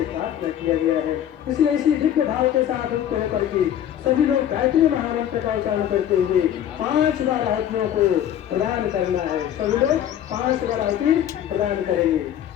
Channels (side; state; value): right; quieter; 10.6 dB